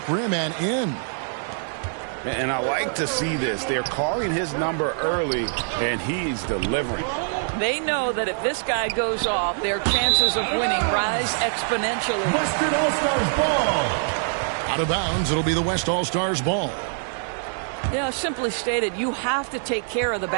rim and in. And I like to see this. They're calling his number early, and he's delivering. They know that if this guy goes off, their chances of winning rise exponentially. Western All-Stars ball. Out of bounds, it'll be the West All-Stars ball. Yeah, simply stated, you have to take care of the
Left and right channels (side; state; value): left; silent; digital silence